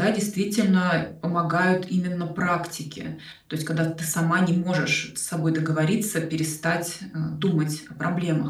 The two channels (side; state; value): both; identical; correlation 1.00